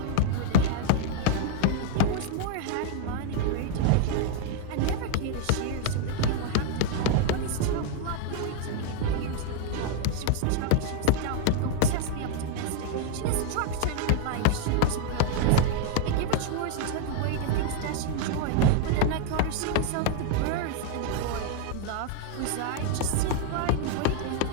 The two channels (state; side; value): different; both; correlation 0.00